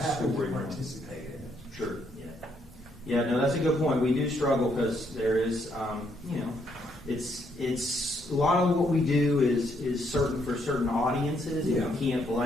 story? Participate in it. Sure. Yeah, no, that's a good point. We do struggle because there is, it's a lot of what we do is certain for certain audiences, and you can't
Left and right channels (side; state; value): both; normal; correlation 0.73